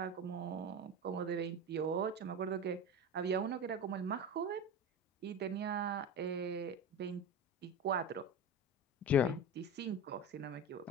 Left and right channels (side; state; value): both; normal; correlation 0.27